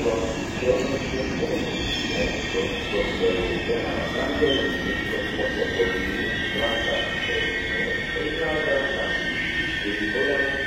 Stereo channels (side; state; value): both; identical; correlation 1.00